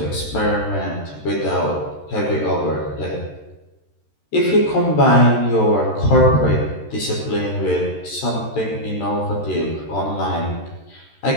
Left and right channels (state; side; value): late; right; 13 ms